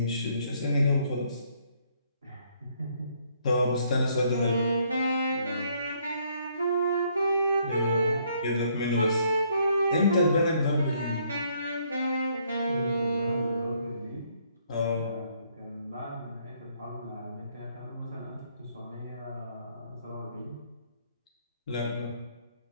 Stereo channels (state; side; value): inverted; both; correlation -0.68